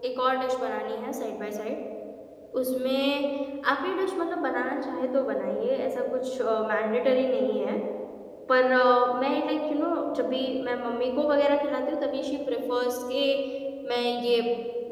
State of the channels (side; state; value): both; identical; correlation 1.00